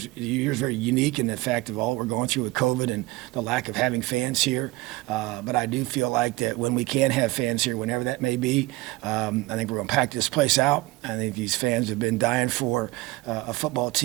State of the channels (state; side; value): quieter; left; 20.8 dB